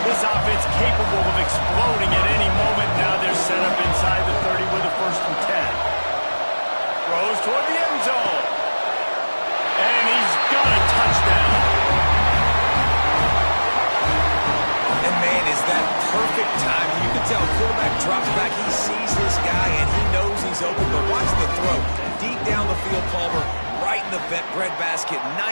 This offense capable of exploding at any moment. Now they're set up inside the 30 with a 1st and 10. Throws toward the end zone. And he's got a touchdown. And man, is that perfect timing. You can tell quarterback drops back. He sees this guy, and he knows he's open. But watch the throw. Deep down the field, Palmer, right in the breadbasket.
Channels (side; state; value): both; inverted; correlation -1.00